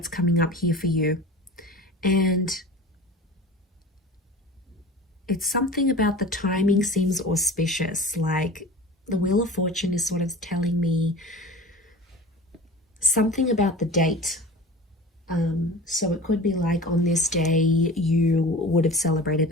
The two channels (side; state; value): both; normal; correlation 0.37